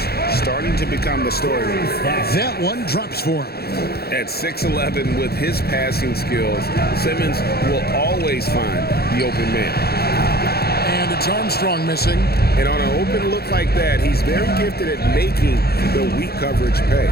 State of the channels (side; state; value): right; late; 0.46 ms